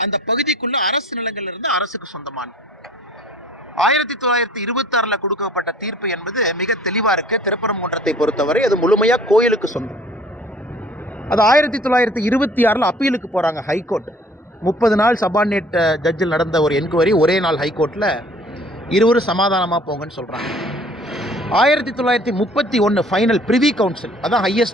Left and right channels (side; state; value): both; normal; correlation 0.53